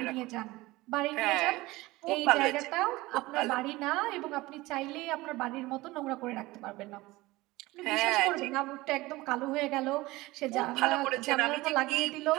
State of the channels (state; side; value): quieter; left; 19.9 dB